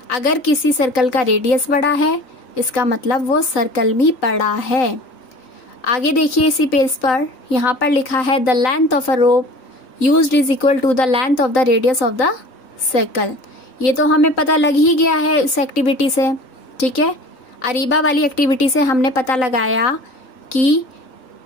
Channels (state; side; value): late; right; 3.9 ms